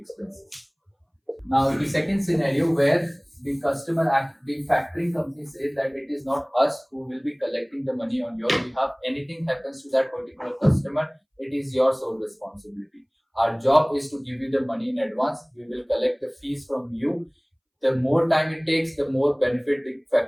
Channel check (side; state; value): both; identical; correlation 1.00